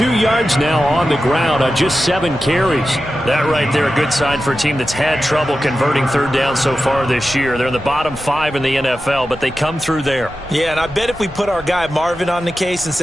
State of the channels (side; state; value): both; normal; correlation 0.92